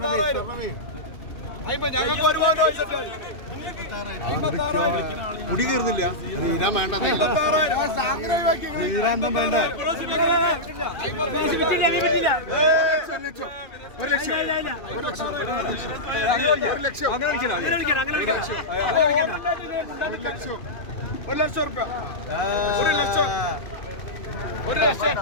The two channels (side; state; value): right; late; 2.6 ms